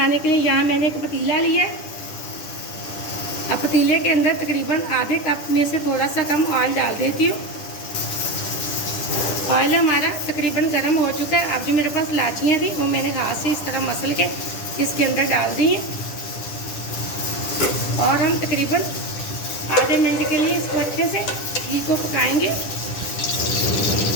के लिए यहाँ मैंने एक पतीला लिया है। अब पतीले के अंदर तकरीबन आधे कप में से थोड़ा सा कम ऑयल डाल देती हूँ। ऑयल हमारा तकरीबन गर्म हो चुका है। अब जो मेरे पास इलायचियाँ थी वो मैंने हाथ से इस तरह मसल के इसके अंदर डाल दी हैं और हम तकरीबन आधे मिनट के लिए इसको अच्छे से घी को पकाएंगे।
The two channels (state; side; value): late; right; 10 ms